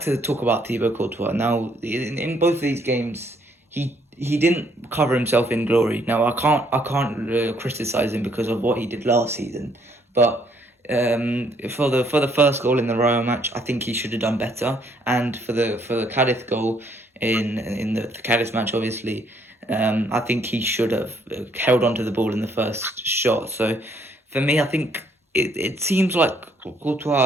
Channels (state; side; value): normal; both; correlation 0.68